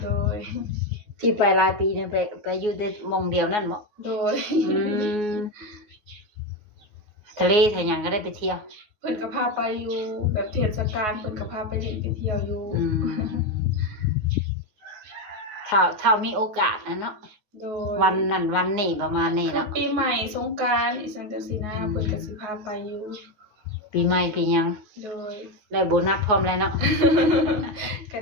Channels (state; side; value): late; left; 9.5 ms